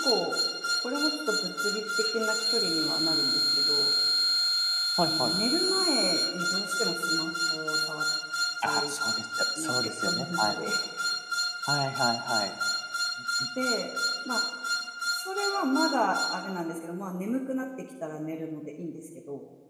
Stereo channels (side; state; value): both; identical; correlation 1.00